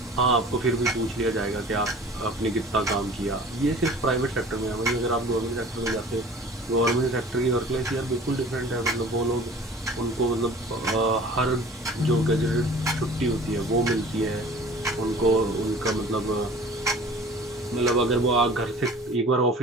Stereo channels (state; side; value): normal; both; correlation 0.45